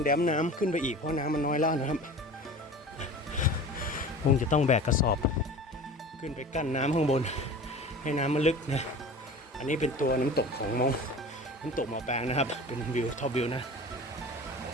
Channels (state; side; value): normal; both; correlation 0.38